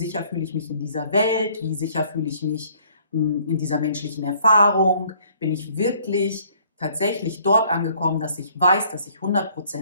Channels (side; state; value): both; inverted; correlation -0.60